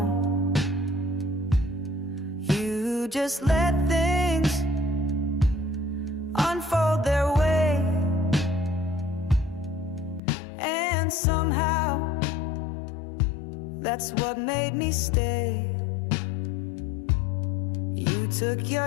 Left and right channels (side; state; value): right; drops out; at 10.2 s